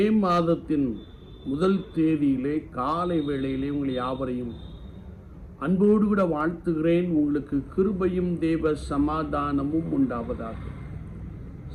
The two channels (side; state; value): both; identical; correlation 1.00